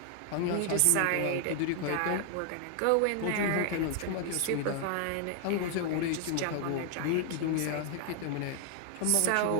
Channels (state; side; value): different; both; correlation 0.00